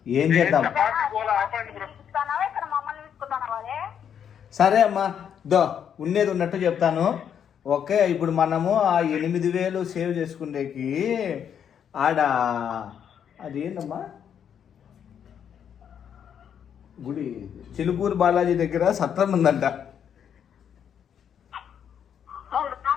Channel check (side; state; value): right; quieter; 8.4 dB